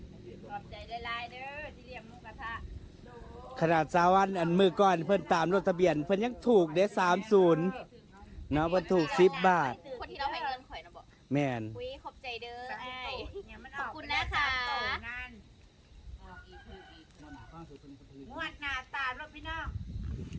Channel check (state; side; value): identical; both; correlation 1.00